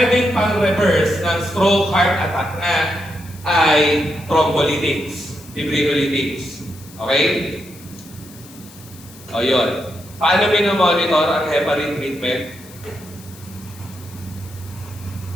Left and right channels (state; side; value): noise; left; hiss, 21 dB below the sound